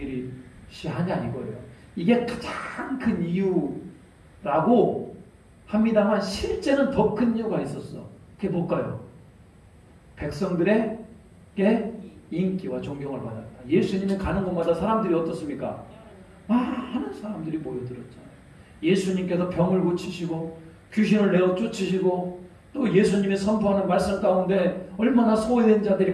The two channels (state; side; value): identical; both; correlation 1.00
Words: 이거예요. 이게 가장 큰 이유라고 합니다만 실제는 더 큰 이유가 있었어. 그게 뭘까요? 백성들에게 인기와 존경을 받았다. 예수님이 가는 곳마다 사람들이 어떻습니까? 많은 사람들이 모여들었잖아요. 예수님께서 병을 고치시고 귀신을 내어 쫓으시고 또 예수님이 선포하는 말씀 가운데 얼마나 소외된 자들이